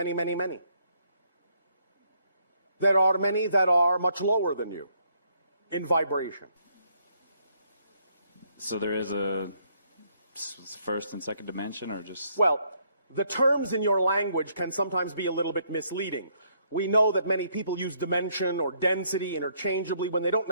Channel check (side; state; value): both; inverted; correlation -0.70